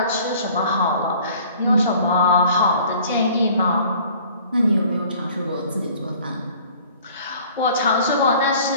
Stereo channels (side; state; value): both; inverted; correlation -0.51